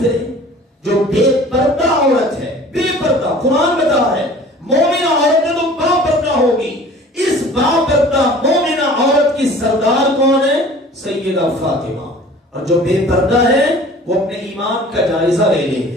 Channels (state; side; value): normal; both; correlation 0.46